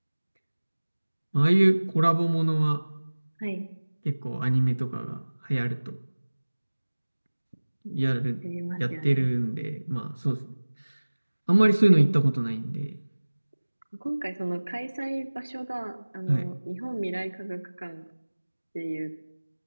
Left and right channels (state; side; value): inverted; both; correlation -1.00